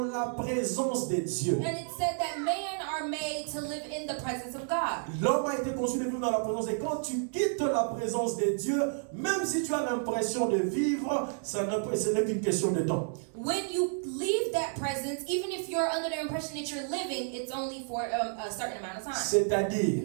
présence de Dieu. And it said that men are made to live in the presence of God. L'homme a été conçu de vivre dans la présence. Et quand tu quittes la présence de Dieu, même si tu as l'impression de vivre, ce n'est qu'une question de temps. When you leave that presence, even if you're under the impression that you're living, it's only for a certain amount of time.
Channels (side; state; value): left; silent; 57 dB below the other